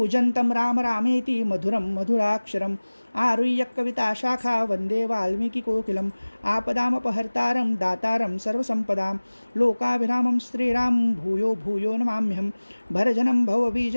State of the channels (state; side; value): inverted; both; correlation -1.00